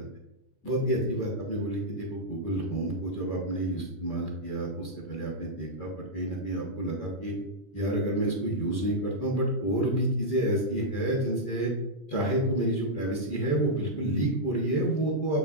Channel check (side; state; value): right; late; 20 ms